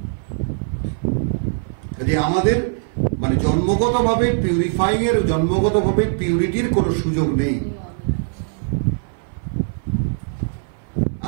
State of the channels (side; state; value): left; silent; 57 dB below the other